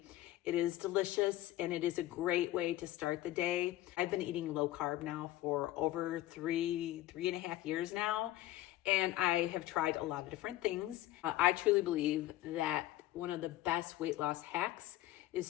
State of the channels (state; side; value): quieter; right; 15.3 dB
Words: It is delicious and it is a great way to start the day. I've been eating low carb now for over three and a half years now, and I have tried a lot of different things. I truly believe that one of the best weight loss hacks